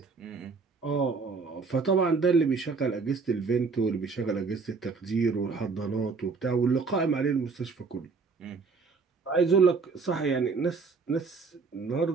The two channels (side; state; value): left; quieter; 4.7 dB